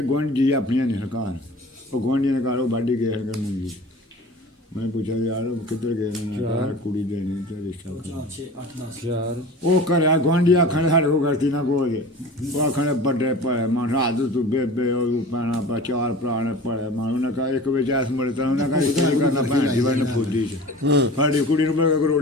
ਗੁਆਂਢੀ ਆਪਣੀਆਂ ਨੇ ਸਰਕਾਰ, ਉਹ ਗੁਆਂਢੀਆਂ ਦੇ ਘਰ ਉਹ ਵਾਢੀ ਗਏ ਕਰਨ ਮੁੰਡੀ। ਮੈਂ ਪੁੱਛਿਆ ਯਾਰ ਕਿੱਧਰ ਗਏ ਨੇ, ਯਾਰ ਕੁੜੀ ਦੇ ਨਹੀਂ ਤੇ ਰਿਸ਼ਤਾ ਯਾਰ ਉਹ ਘਰਿਆ ਗੁਆਂਢੀ ਆਖਣ ਸਾਡੇ ਕੋਲ ਗਲਤੀ ਨਾ ਕੋਈ, ਉਹ ਆਖਣ ਵੱਡੇ ਭਲੇ ਮਾਨ ਰਾਤ ਤੂੰ ਬੇਬੇ ਉਹ ਪੈਣਾ ਪਾ ਚਾਰ ਭਰਾ ਨੇ ਭਲੇ ਮਾਨ, ਉਹਨੇ ਕਹਾ ਇੱਕ ਵਿੱਚ ਐਸ ਮੁੜੇ ਤਾਂ ਉਹਨੇ ਕਹਾ ਰਿਸ਼ਤਾ ਨਹੀਂ ਕਰਨਾ ਭੈਣ ਦੀ ਵਨ ਫੁੱਦੀ ਚ ਸਾਡੀ ਕੁੜੀ ਨੂੰ ਮੈਂ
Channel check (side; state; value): both; normal; correlation 0.39